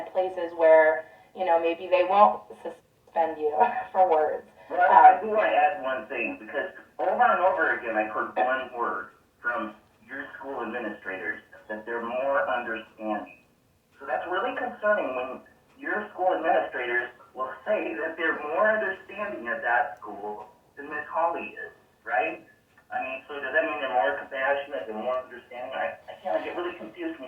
places where, maybe they won't suspend you for words. Well, I do want to add one thing, because over and over again, I've heard one word from your school administrators, that they're more understanding. So that's really concerning when your school administrators will say that they're more understanding at that school than Miss Hawley is, right? I mean, so does that mean they're more compassionate, they're more understanding? I get really confused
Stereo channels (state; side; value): identical; both; correlation 1.00